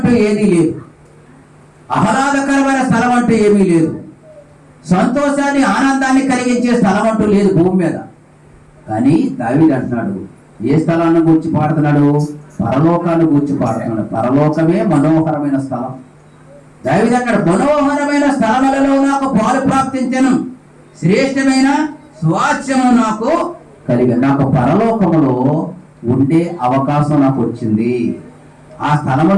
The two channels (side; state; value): both; identical; correlation 1.00